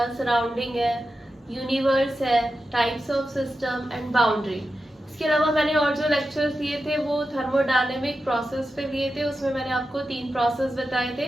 सराउंडिंग है, यूनिवर्स है, types of system and boundary. इसके अलावा मैंने और जो लेक्चर्स लिए थे वो थर्मोडायनेमिक प्रोसेस पे लिए थे। उसमें मैंने आपको 3 प्रोसेस बताए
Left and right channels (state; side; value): normal; both; correlation 0.91